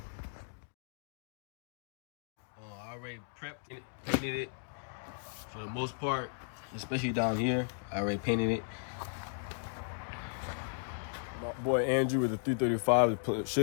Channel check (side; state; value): right; silent; digital silence